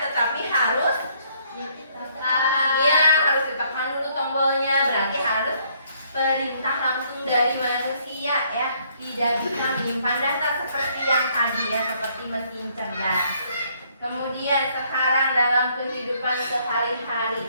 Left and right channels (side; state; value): both; inverted; correlation -0.67